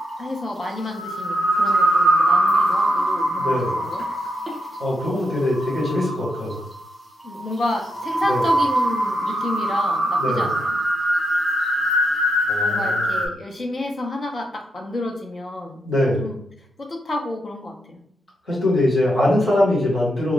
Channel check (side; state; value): both; normal; correlation 0.81